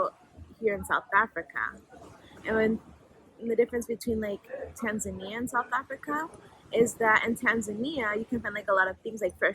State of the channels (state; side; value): identical; both; correlation 1.00